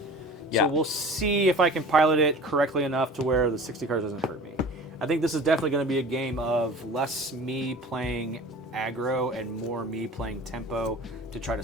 Yeah. So we'll see if I can pilot it correctly enough to where the 60 cards doesn't hurt me. I think this is definitely going to be a game of less me playing aggro and more me playing tempo to try to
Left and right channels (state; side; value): normal; both; correlation 0.41